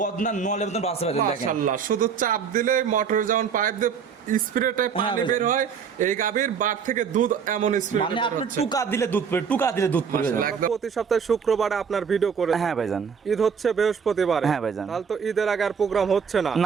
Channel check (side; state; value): left; quieter; 6.7 dB